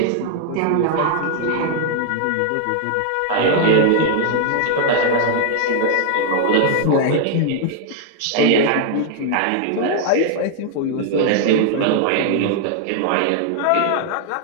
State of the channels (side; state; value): both; different; correlation 0.00